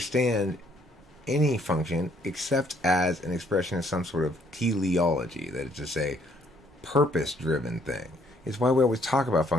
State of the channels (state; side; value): normal; both; correlation 0.66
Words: any function except as an expression of some sort of teleology, that is to say, purpose-driven thing. It's why we always talk about